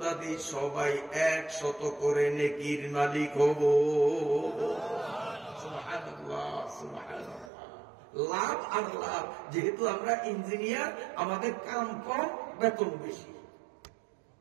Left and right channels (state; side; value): drops out; left; at 7.5 s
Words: সবাই 100 করে নেকির মালিক হব। সুবহানাল্লাহ, সুবহানাল্লাহ। লাভ আর লাভ। যেহেতু আমরা ইঞ্জিনিয়ার, আমাদের কাম কম, বেতন বেশি।